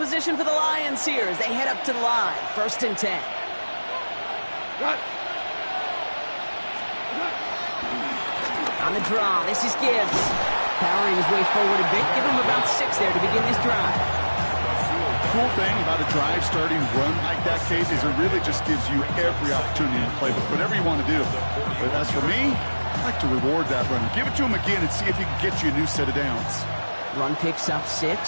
for the Lions here as they head up to the line. 1st and 10. On the draw, this is Gibbs. Powering his way forward a bit. Give him about 6 there to begin this drive. Cool thing about a drive starting run like that, Kate, is it really just gives you every opportunity to play with whatever you want to do. But as for me, I like to reward that run. Give it to him again and see if he can get you a new set of downs. Run picks up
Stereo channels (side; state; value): both; inverted; correlation -1.00